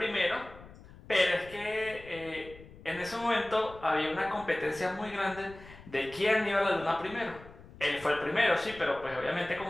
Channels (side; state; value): left; noise; rumble, 19 dB below the sound